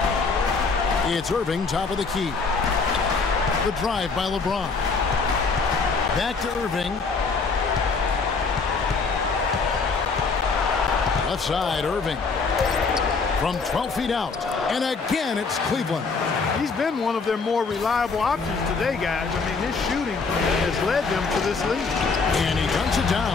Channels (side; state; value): right; quieter; 4.6 dB